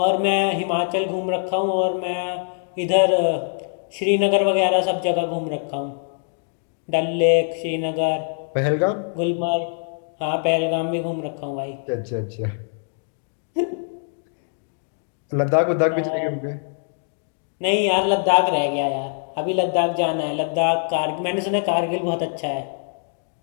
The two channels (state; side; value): silent; right; digital silence